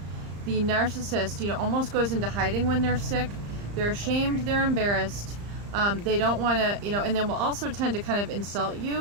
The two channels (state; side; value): late; left; 35 ms